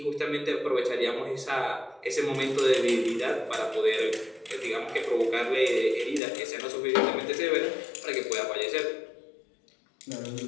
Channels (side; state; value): right; drops out; at 6.2 s